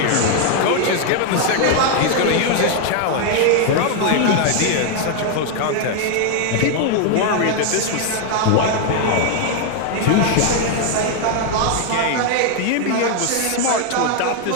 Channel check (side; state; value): both; different; correlation 0.01